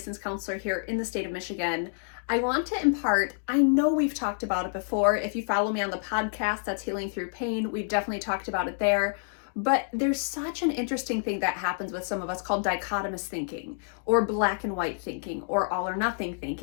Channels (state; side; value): silent; right; digital silence